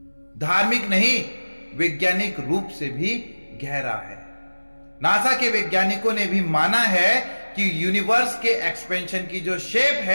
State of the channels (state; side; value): inverted; both; correlation -1.00